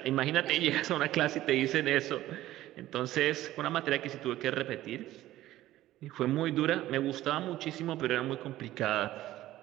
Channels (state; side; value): quieter; left; 14.9 dB